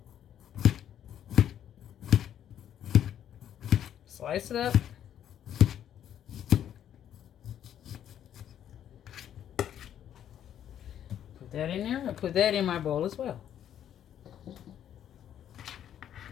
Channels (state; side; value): quieter; right; 10.2 dB